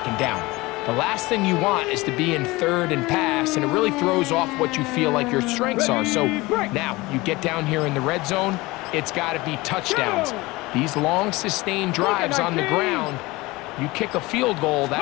down. The last thing you want is to be in 3rd and pass, and it really throws off what you feel like your strengths are. So now you get down here in the red zone, it's got to be touchdowns. These long, sustained drives on the ground, you kick a field goal,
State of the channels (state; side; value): quieter; right; 21.6 dB